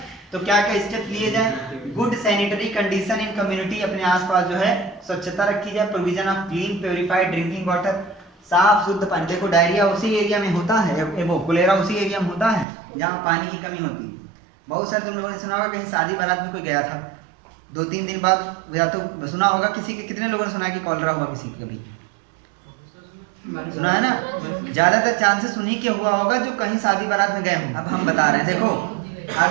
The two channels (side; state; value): left; drops out; at 12.7 s